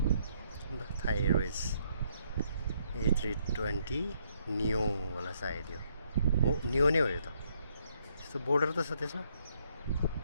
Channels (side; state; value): both; inverted; correlation -0.71